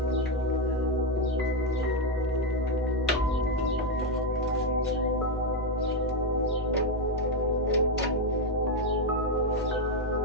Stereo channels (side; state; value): both; normal; correlation 0.05